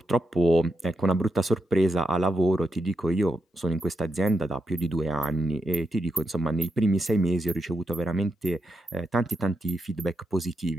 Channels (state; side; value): normal; both; correlation 0.84